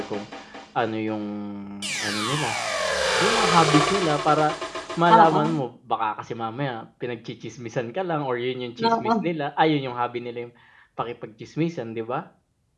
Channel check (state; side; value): identical; both; correlation 1.00